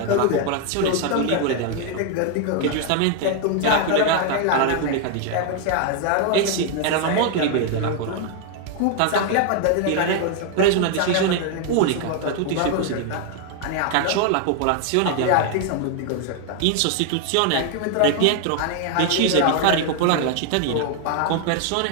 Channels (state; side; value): different; both; correlation 0.00